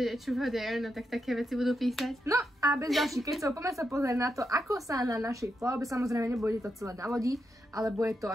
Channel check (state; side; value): normal; both; correlation 0.84